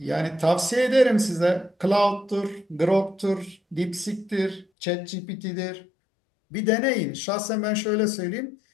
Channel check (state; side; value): drops out; right; at 4.7 s